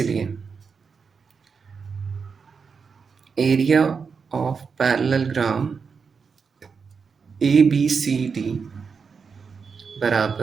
एरिया ऑफ पैरेललोग्राम ए बी सी डी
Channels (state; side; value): quieter; left; 5.6 dB